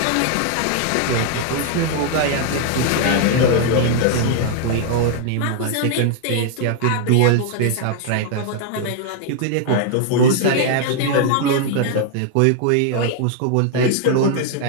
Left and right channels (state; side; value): different; both; correlation 0.00